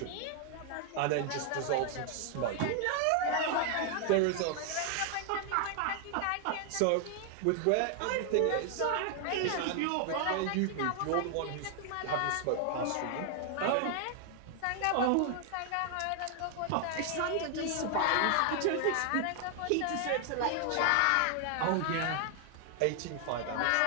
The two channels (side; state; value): both; different; correlation 0.00